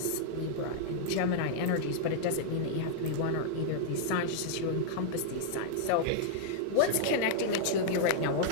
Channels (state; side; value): different; both; correlation -0.01